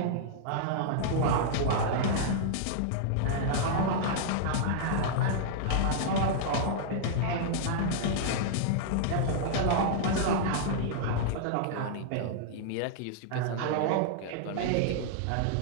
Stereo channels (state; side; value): different; both; correlation -0.01